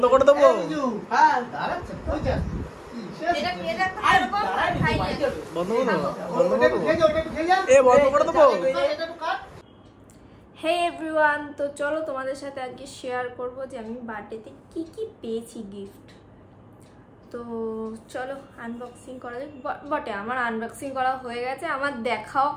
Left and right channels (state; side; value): identical; both; correlation 1.00